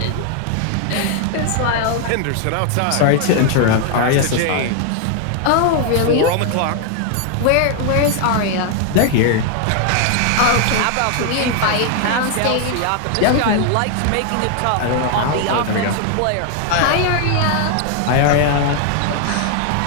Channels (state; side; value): different; both; correlation 0.00